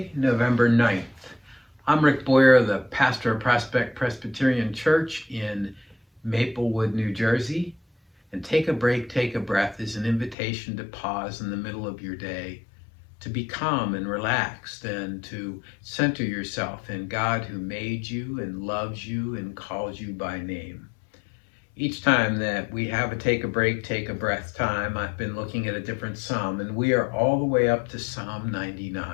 November 9th. I'm Rick Boyer, the pastor of Prospect Presbyterian Church in Maplewood, New Jersey. And Take a Break, Take a Breath is an invitation to pause in the middle of your day, to be calm and relaxed, and to center yourself in God who made you and loves you and calls you by name. Each time that we have a take a break, take a breath time, I've been looking at a different psalm, and we are all the way up to Psalm 99.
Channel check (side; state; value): right; drops out; at 10.4 s